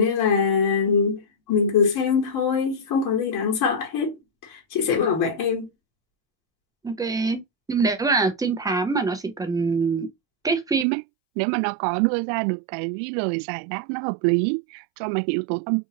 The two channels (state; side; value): drops out; left; at 10.9 s